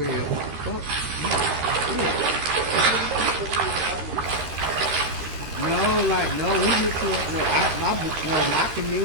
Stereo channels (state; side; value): late; left; 13 ms